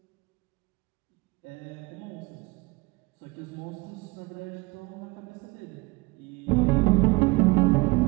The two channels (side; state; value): left; quieter; 24.2 dB